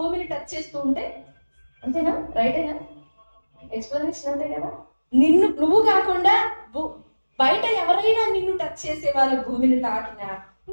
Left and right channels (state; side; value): inverted; both; correlation -1.00